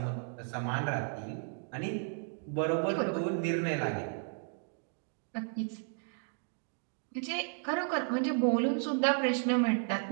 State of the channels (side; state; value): left; silent; 55 dB below the other